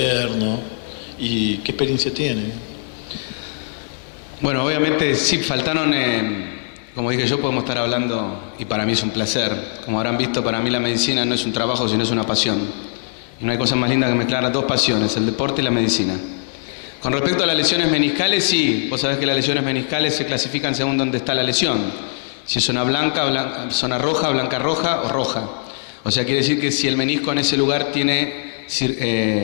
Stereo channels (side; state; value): right; silent; digital silence